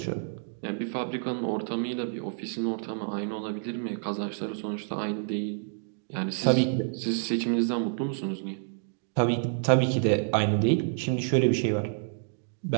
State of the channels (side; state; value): left; silent; digital silence